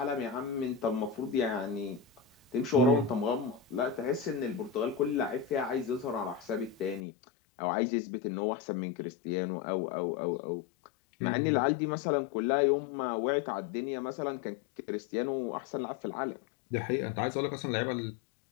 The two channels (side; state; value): right; drops out; at 7.0 s